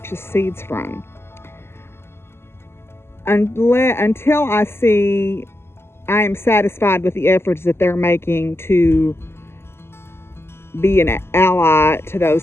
seeds from until I am satisfied with the efforts that they're making to be an ally to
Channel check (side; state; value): right; late; 0.12 ms